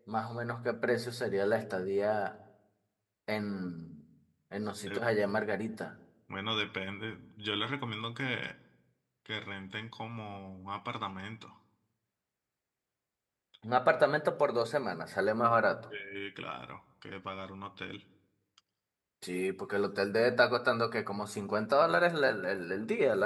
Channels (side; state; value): both; identical; correlation 1.00